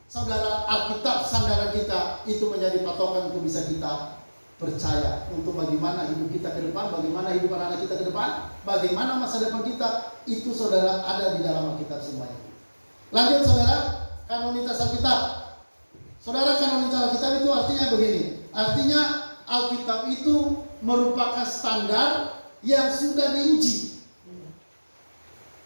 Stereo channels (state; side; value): inverted; both; correlation -1.00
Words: saudara, Alkitab sandaran kita itu menjadi patokan untuk bisa kita percaya untuk bagaimana hidup kita ke depan, bagaimana hidup anak-anak kita ke depan, bagaimana masa depan kita, itu saudara ada di dalam Alkitab semuanya. Lanjut saudara, kanonitas Alkitab. Saudara, kanonitas Alkitab itu artinya begini. Artinya Alkitab itu merupakan standar yang sudah diuji,